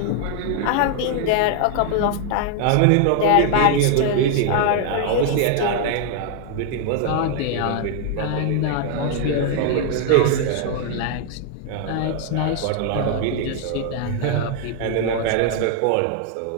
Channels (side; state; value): both; different; correlation 0.00